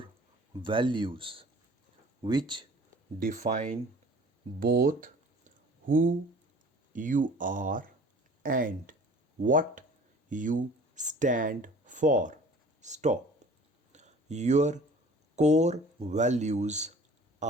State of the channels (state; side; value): normal; both; correlation 0.47